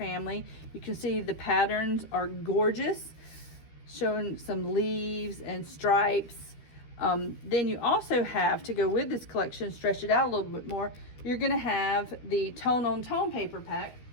You can see the patterns are gorgeous, showing some leaves and stripes. Then you also have, to go with this collection, stretch it out a little bit more, you're going to have the tone-on-tone paper pack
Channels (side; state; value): right; late; 13 ms